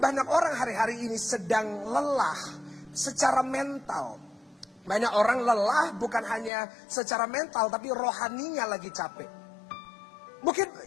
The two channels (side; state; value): right; drops out; at 6.5 s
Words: banyak orang hari-hari ini sedang lelah secara mental. Banyak orang lelah bukan hanya secara mental, tapi rohaninya lagi capek.